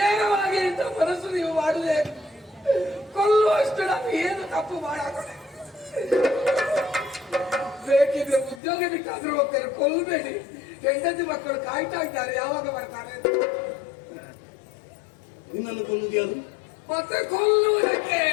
ಇಂಥ ಮನಸ್ಸು ನೀವು ಮಾಡುವೆ, ಕೊಲ್ಲುವಷ್ಟು ನಾನು ಏನು ತಪ್ಪು ಮಾಡಾಕೊಂಡೆ? ಬೇಕಿದ್ರೆ ಉದ್ಯೋಗ ಬಿಟ್ಟಾದ್ರೂ ಹೋಗ್ತಾರೆ, ಕೊಲ್ಲಬೇಡಿ. ಹೆಂಡತಿ ಮಕ್ಕಳು ಕಾಯ್ತಾ ಇದ್ದಾರೆ, ಯಾವಾಗ ಬರ್ತಾರೆ? ನಿನ್ನನ್ನು ಕೊಲ್ಲುವುದು ಯಾರು? ಮತ್ತೆ ಕೊಲ್ಲುವುದಕ್ಕೆ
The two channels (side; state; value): right; drops out; at 8.6 s